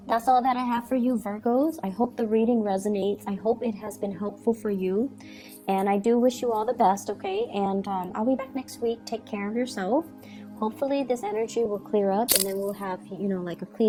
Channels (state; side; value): identical; both; correlation 1.00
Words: that's all that I have for you, Virgos. I hope the reading resonates. I hope it has been helpful for you. And I do wish you all the best, okay? And I'll be back next week. Take care of yourself. Hopefully this energy will clear up, and then we'll have, you know, like a